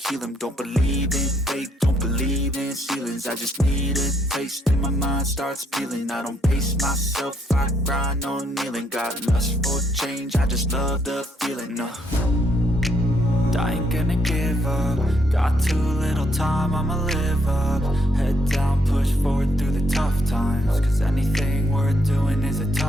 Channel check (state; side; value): normal; both; correlation 0.73